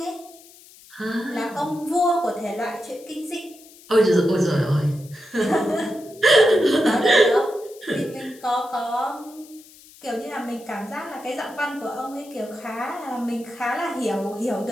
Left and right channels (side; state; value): left; noise; hiss, 23 dB below the sound